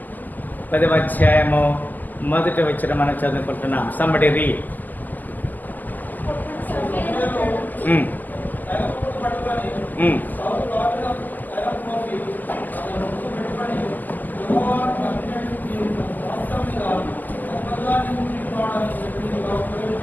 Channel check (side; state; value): right; late; 0.084 ms